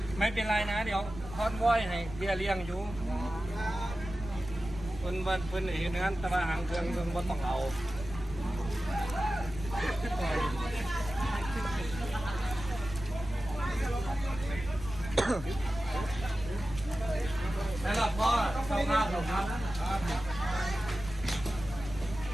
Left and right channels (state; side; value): noise; right; rumble, 13 dB below the sound